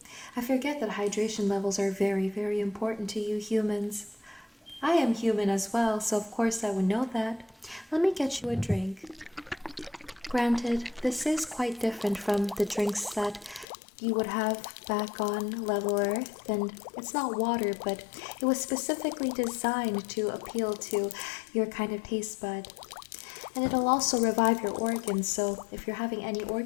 I forget that hydration levels are very, very important to you humans. I am human as well, so of course I would know that. Let me get you a drink. Granted, this is quite different from the drinks that you would have back on level Earth, and it's not water, but it was specifically designed to appeal to your kind of taste bud. And it'll also revive your organs, so if you're having any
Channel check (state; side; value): drops out; right; at 13.7 s